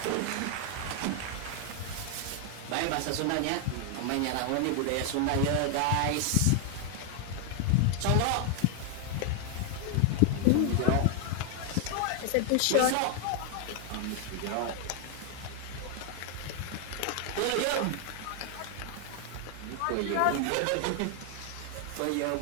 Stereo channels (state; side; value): different; both; correlation 0.00